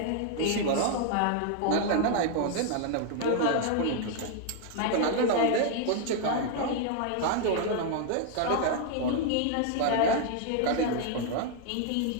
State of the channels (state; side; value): different; both; correlation 0.00